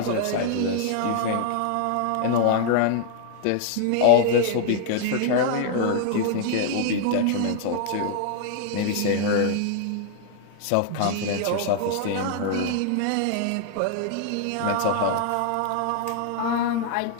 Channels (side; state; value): both; different; correlation -0.01